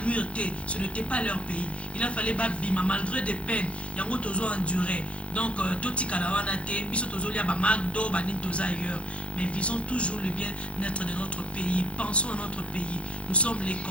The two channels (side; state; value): right; late; 0.061 ms